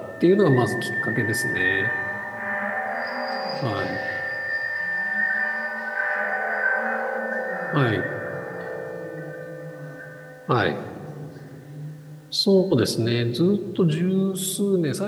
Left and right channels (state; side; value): identical; both; correlation 1.00